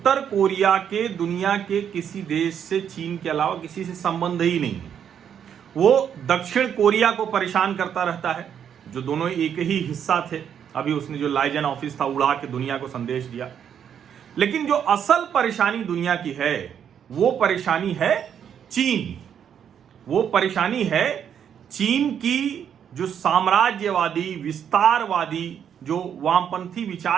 कोरिया के दुनिया के किसी देश से, चीन के अलावा किसी से संबंध ही नहीं है। वो दक्षिण कोरिया को परेशान करता रहता है, जो दोनों एक ही हिस्सा थे। अभी उसने जो लाइजन ऑफिस था उड़ा के दुनिया को संदेश दिया। लेकिन जो असल परेशानी दुनिया की है वो परेशानी है चीन। वो परेशानी है चीन की जो साम्राज्यवादी, विस्तारवादी, जो वामपंथी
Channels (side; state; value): left; quieter; 8.5 dB